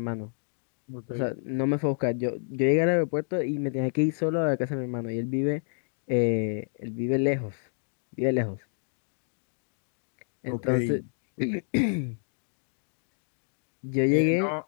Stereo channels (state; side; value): silent; right; digital silence